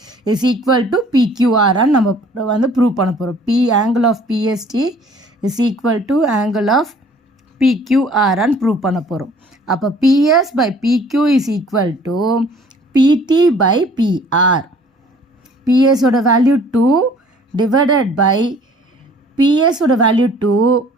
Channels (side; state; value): both; normal; correlation 0.54